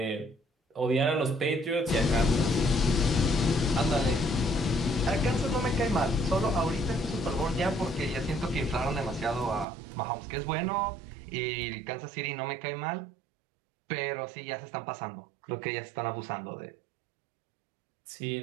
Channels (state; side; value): drops out; left; at 9.7 s